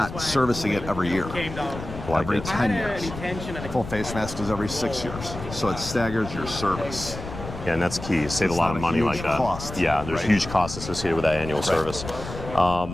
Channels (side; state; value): left; noise; rumble, 10 dB below the sound